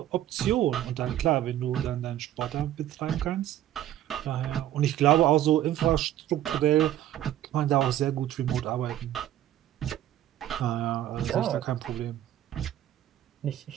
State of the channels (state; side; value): quieter; left; 12.6 dB